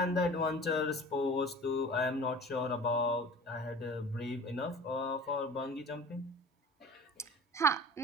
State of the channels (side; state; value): both; normal; correlation 0.41